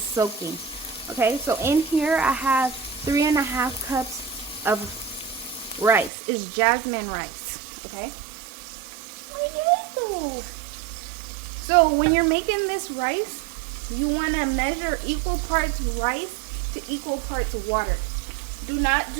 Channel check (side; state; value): left; drops out; at 6.1 s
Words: soaking. Okay, so in here I have 3½ cups of rice. It's Jasmine rice. Okay. So when you're making this rice, you want to measure equal parts rice to equal parts water. Do not